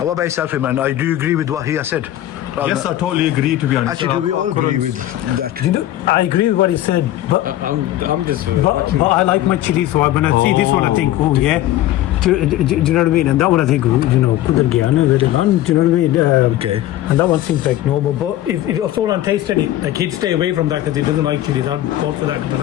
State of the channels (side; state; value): right; quieter; 13.9 dB